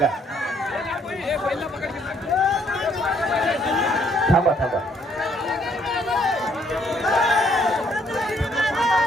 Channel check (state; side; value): normal; both; correlation 0.67